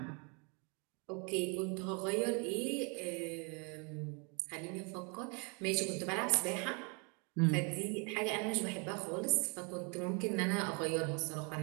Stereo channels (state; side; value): quieter; left; 33.8 dB